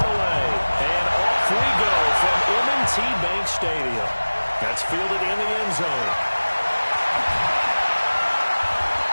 away. And off we go from M&T Bank Stadium. That's fielded in the end zone.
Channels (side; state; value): both; inverted; correlation -1.00